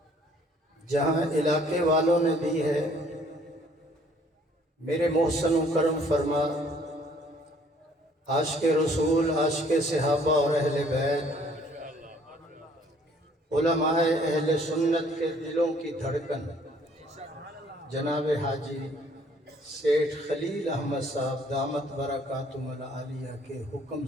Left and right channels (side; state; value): both; normal; correlation 0.60